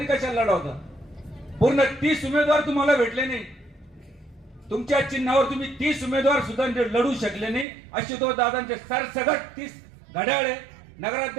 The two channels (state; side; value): drops out; left; at 7.7 s